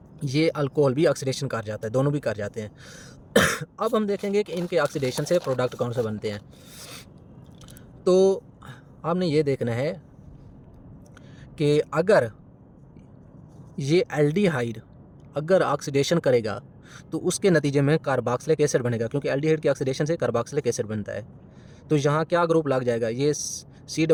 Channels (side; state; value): both; identical; correlation 1.00